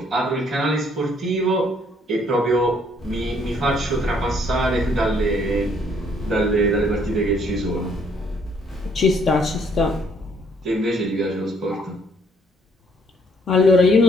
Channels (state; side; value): normal; both; correlation 0.66